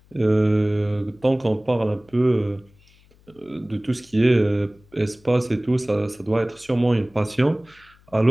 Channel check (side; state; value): left; noise; hum, 30 dB below the sound